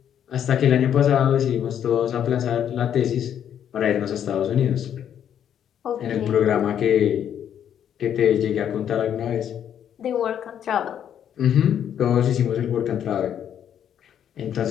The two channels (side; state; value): right; quieter; 9.4 dB